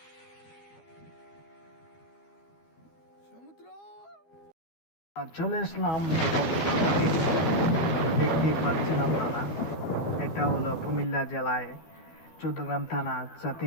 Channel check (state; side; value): late; right; 12 ms